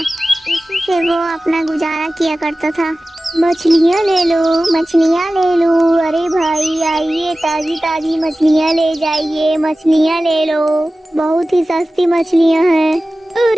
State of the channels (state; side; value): normal; both; correlation 0.96